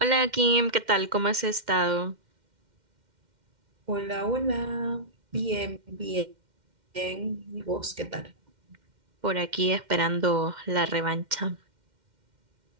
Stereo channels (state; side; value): late; left; 2.1 ms